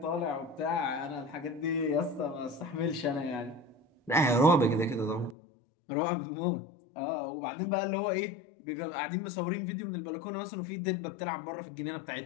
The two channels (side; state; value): right; drops out; at 5.4 s